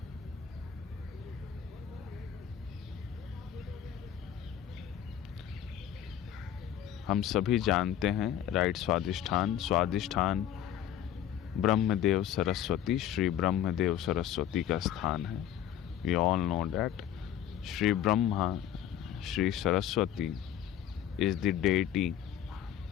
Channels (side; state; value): right; quieter; 10.4 dB